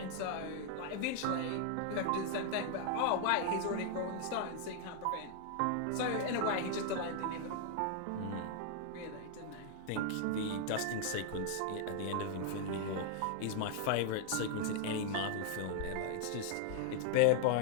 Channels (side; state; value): both; different; correlation 0.00